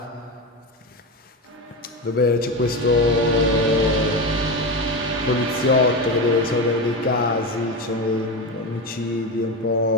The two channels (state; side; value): normal; both; correlation 0.18